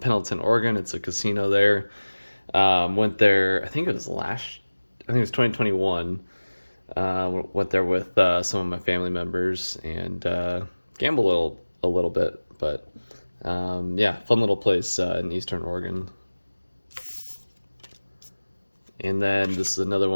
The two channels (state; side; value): inverted; both; correlation -1.00